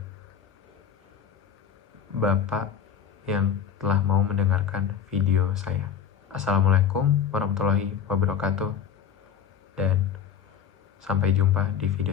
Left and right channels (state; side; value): quieter; right; 8.1 dB